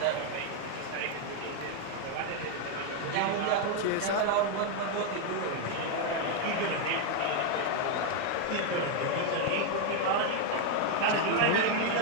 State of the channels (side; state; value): both; different; correlation 0.01